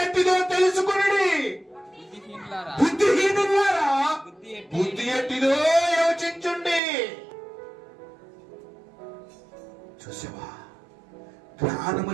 ఎట్టిదో తెలుసుకుని వారులారా, బుద్ధిహీనులారా, బుద్ధి బుద్ధి ఎట్టిదో యోచించుండి. చూసావా, జ్ఞానము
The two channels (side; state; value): left; drops out; at 6.8 s